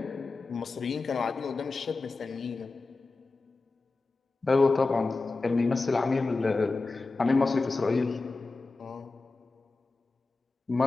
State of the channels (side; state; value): right; quieter; 3.7 dB